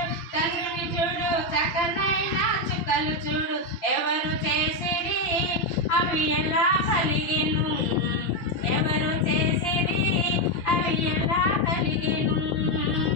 చంద్రుని చూడు, చక్కనైన చుక్కలు చూడు. ఎవరు చేసిరి అవి ఎలా కలిగెను, ఎవరు చేసిరి అవి ఎలా కలిగెను.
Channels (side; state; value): right; late; 5.8 ms